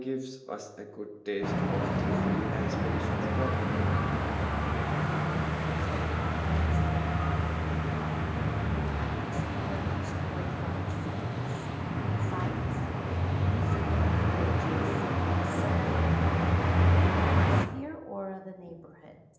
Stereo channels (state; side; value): identical; both; correlation 1.00